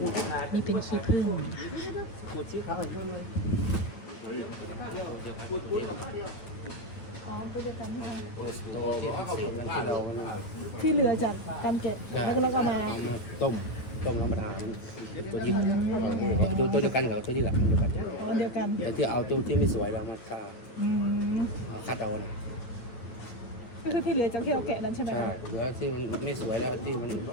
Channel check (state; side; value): late; right; 9.3 ms